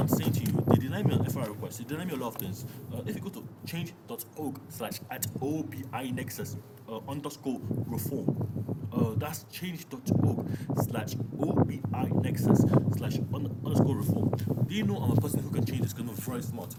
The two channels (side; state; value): both; identical; correlation 1.00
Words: saying to you, they deny me an FRI request, they deny me a lot of things. If you go to change.org/@OBI Nexus underscore reform, that's change.org/OBI Nexus/underscore reform. Do you know I'm a person who can change this because I'm very smart?